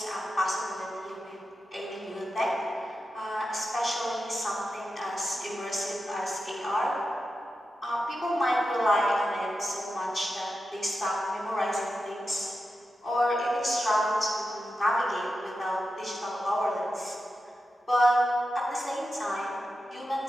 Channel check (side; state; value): both; normal; correlation 0.90